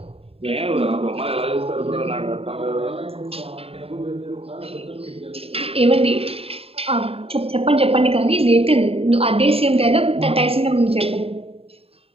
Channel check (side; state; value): left; late; 0.28 ms